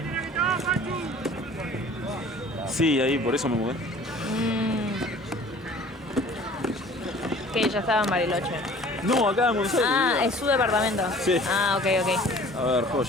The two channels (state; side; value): normal; both; correlation 0.48